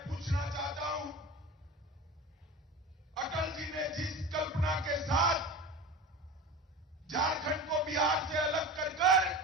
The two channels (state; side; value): normal; both; correlation 0.31